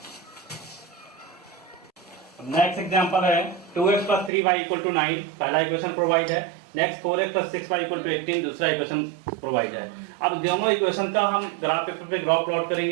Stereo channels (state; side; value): drops out; left; at 4.3 s